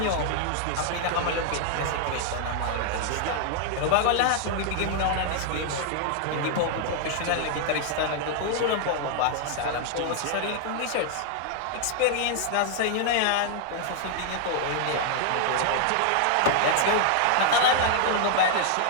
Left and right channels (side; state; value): both; different; correlation 0.00